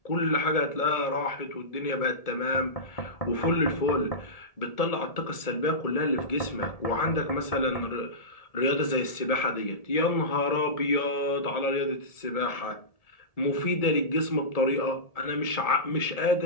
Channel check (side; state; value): right; late; 1.7 ms